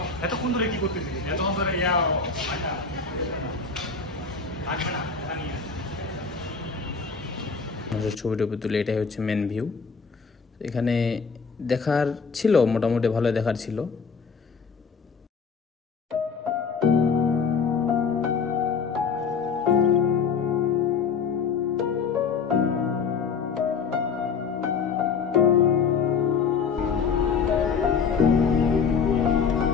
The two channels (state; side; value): quieter; right; 5.6 dB